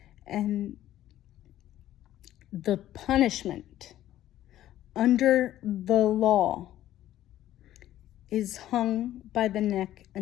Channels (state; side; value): quieter; right; 13.1 dB